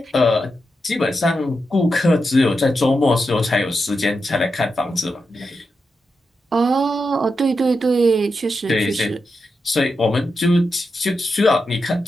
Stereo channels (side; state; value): both; normal; correlation 0.87